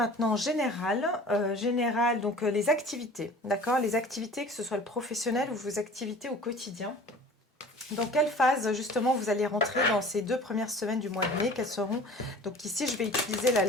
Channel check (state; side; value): normal; both; correlation 0.43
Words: général, donc les activités, d'accord? Les activités, que ce soit le professionnel ou vos activités au quotidien. Dans quelle phase justement vous allez rentrer dans ces 2 premières semaines du mois de mai? Quelles seront... Donc ici je vais utiliser la